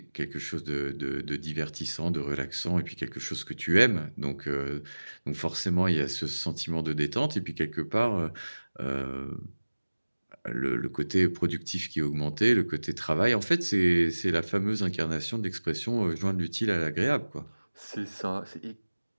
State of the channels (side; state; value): both; inverted; correlation -1.00